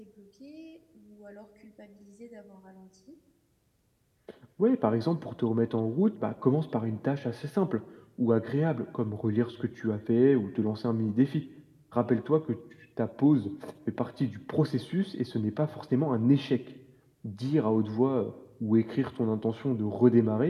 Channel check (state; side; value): identical; both; correlation 1.00